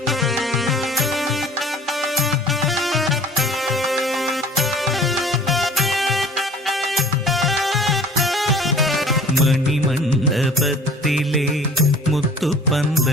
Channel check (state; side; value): normal; both; correlation 0.47